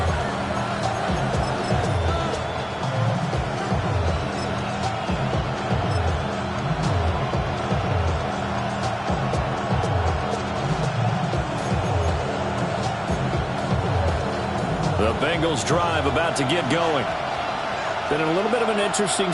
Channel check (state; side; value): identical; both; correlation 1.00